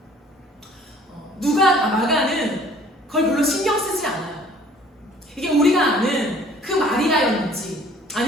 마가는 그걸 별로 신경 쓰지 않아요. 이게 우리가 아는 그 마리아였는지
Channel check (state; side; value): normal; both; correlation 0.54